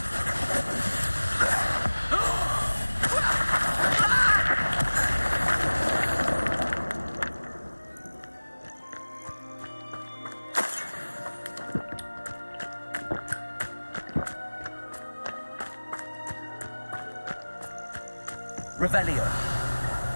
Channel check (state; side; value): inverted; both; correlation -1.00